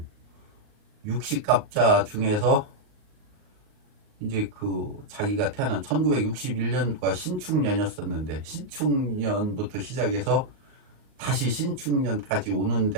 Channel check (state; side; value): late; left; 39 ms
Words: 60갑자 중에서 이제 그 자기가 태어난 1961년도가 신축년이었었는데 신축년부터 시작해서 다시 신축년까지 오는